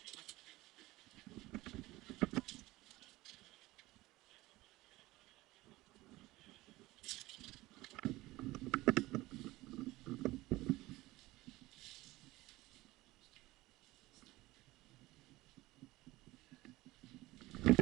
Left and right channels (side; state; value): left; quieter; 19.0 dB